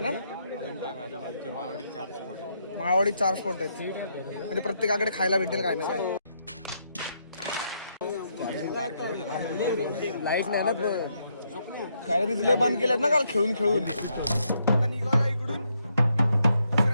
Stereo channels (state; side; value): inverted; both; correlation -0.77